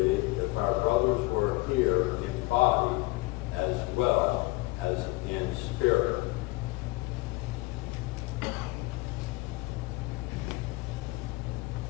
if our brothers were here in body as well as in spirit.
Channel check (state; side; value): quieter; right; 22.2 dB